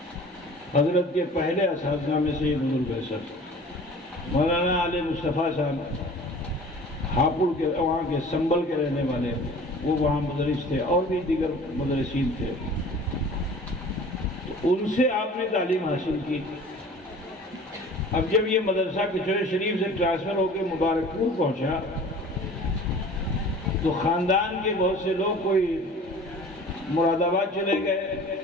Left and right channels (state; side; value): normal; both; correlation 0.44